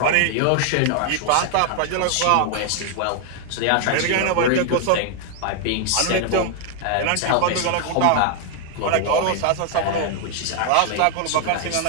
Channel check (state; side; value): different; both; correlation 0.00